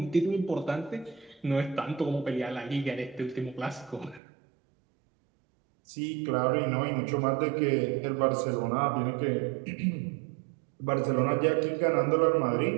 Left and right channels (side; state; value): left; drops out; at 4.2 s